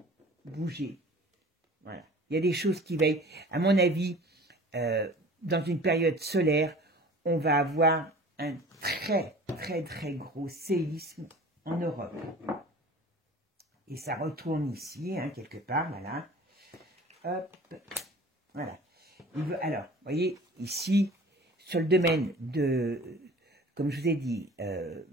bouger. Voilà. Il y a des choses qui va, à mon avis, dans une période solaire, on va avoir un très gros séisme en Europe. Et ça retourne ici, hein, quelque part, voilà. Hop, voilà. Alors, vous voyez, ici, sur le domaine de, comme je vous ai dit,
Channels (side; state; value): both; normal; correlation 0.44